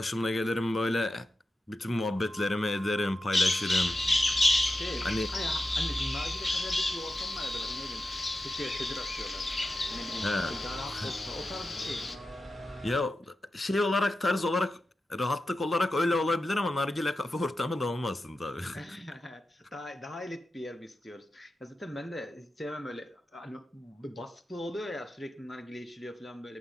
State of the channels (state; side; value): normal; both; correlation 0.92